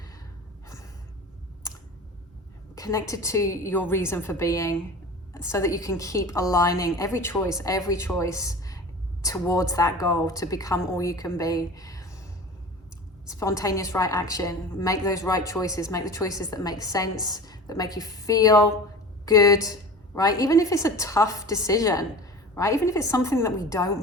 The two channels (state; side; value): normal; both; correlation 0.35